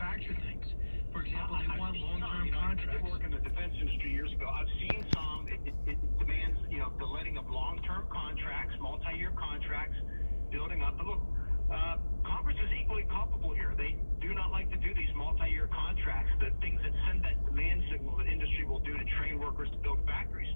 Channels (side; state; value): both; inverted; correlation -1.00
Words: things? For example, they want long-term contracts. I did work in the defense industry years ago. I've seen some. It demands, the letting of long-term contracts, multi-year contracts, building up. But look, Congress is equally culpable here. They do not like to do these multi-year contracts, the things that send that demand signal that industry will do to train workers to build factories.